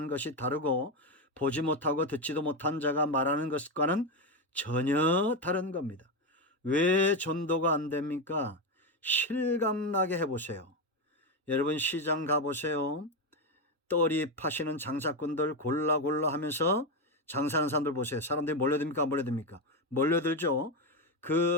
것이 다르고 보지 못하고 듣지도 못한 자가 말하는 것과는 전혀 다른 겁니다. 왜 전도가 안 됩니까? 실감나게 해보세요. 여러분 시장 가보세요. 떨이 파시는 장사꾼들 골라 하면서 장사하는 사람들 보세요. 사람들이 몰려듭니까? 안 몰려듭니까? 몰려들죠.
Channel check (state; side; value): normal; both; correlation 0.10